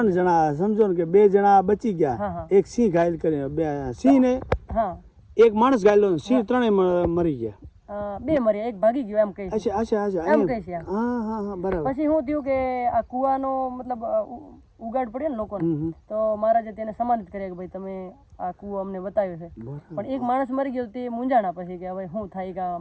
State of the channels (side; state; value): both; identical; correlation 1.00